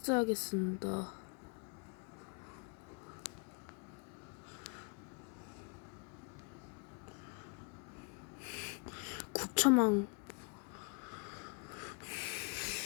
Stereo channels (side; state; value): right; quieter; 35.3 dB